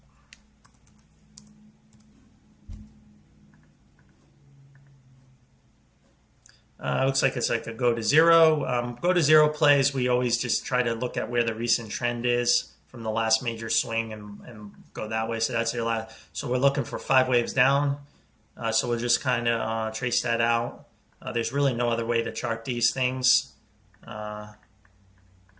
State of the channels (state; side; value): identical; both; correlation 1.00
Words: Looks like it's like a go to zero. Go to zero plays, we always just try to look at where the recent trend is from the last major swing and go that way. So that's your last. So we're looking for 5 waves down. So we'll just kind of trace that out. There's really no other way to chart these things.